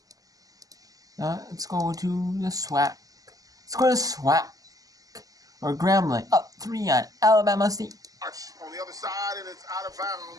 Let's go to the SWAC. Let's go to SWAC. Or Grambling up 3 on Alabama State. On the other side, and it's out of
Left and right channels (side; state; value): left; late; 0.17 ms